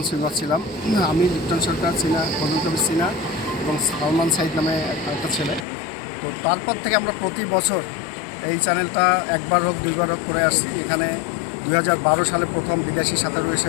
সুইমার ছিলাম, আমি লিপ্টন সরকার, ফজল কবির সিনা এবং সালমান সাইদ নামে একটা ছেলে। তো তারপর থেকে আমরা প্রতি বছর এই চ্যানেলটা একবার হোক 2বার হোক করে আসছি। এখানে 2012 সালে প্রথম বিদেশি সাঁতারু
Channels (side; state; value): right; drops out; at 5.7 s